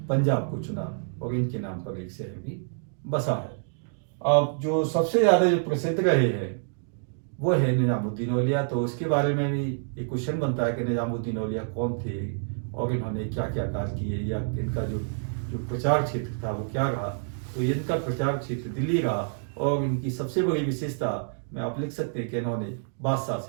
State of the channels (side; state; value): left; silent; digital silence